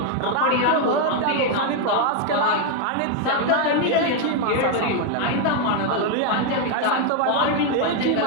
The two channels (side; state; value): both; different; correlation 0.01